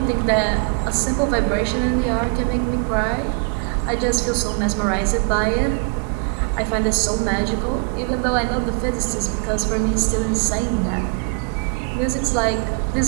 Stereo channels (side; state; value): left; quieter; 34.7 dB